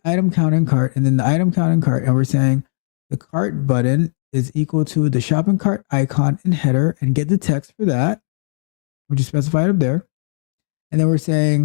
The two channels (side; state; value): right; silent; digital silence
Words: item count in cart, and then the item count in cart, and we're saying the cart button is equal to the shopping cart icon in header, and get the text for that, which is specified up there. And then we're